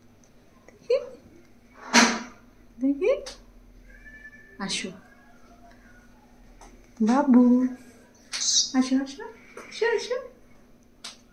দেখি। আসো বাবু, আসো আসো আসো আসো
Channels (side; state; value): both; identical; correlation 1.00